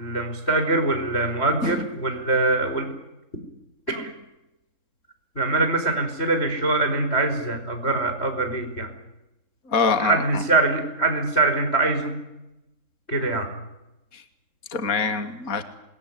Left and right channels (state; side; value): late; right; 3.7 ms